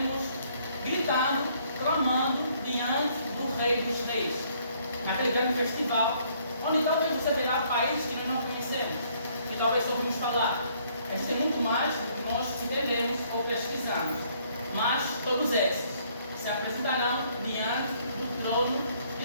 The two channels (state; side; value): inverted; both; correlation -0.65